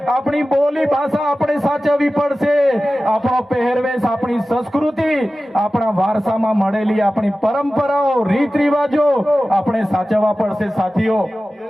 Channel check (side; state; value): both; normal; correlation 0.96